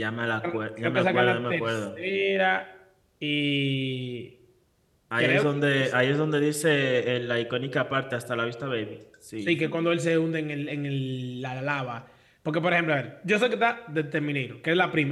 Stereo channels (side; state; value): both; identical; correlation 1.00